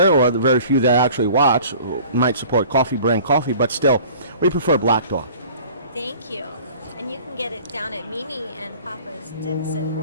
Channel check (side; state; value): both; inverted; correlation -0.47